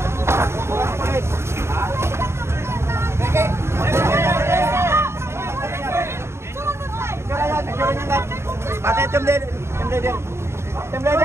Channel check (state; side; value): late; left; 0.13 ms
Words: Pati team leader,